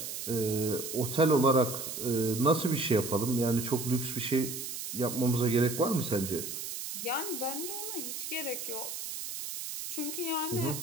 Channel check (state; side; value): noise; right; hiss, 6 dB below the sound